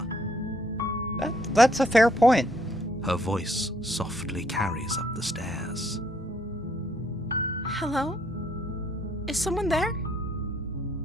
That's a fair point. Her voice softly carries up the stairs. Hello? Is someone there?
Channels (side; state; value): both; normal; correlation 0.68